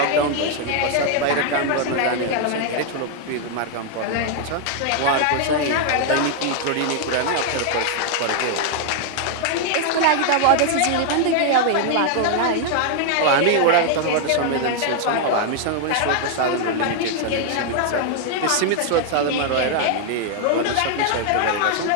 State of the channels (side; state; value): both; different; correlation 0.00